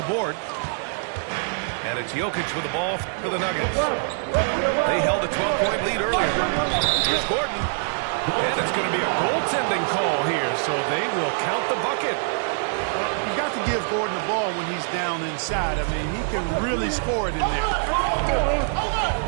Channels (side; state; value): left; silent; digital silence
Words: board. And it's Jokic with the ball for the Nuggets. They held a 12-point lead earlier. Here's Gordon. And it's going to be a goaltending call here, so they will count the bucket. Well, you've got to give Gordon the ball when he's down inside. I mean, he can really score it in there.